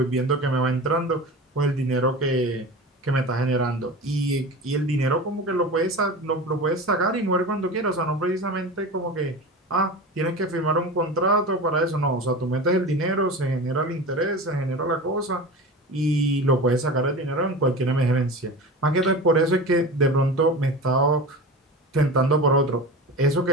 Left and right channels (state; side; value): normal; both; correlation 0.31